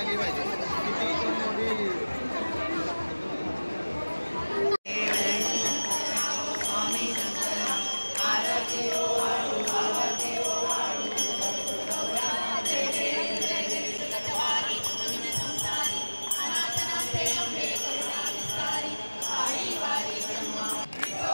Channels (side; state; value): both; inverted; correlation -1.00